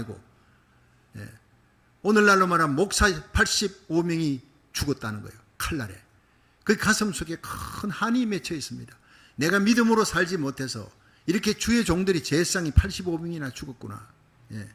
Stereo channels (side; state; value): both; identical; correlation 1.00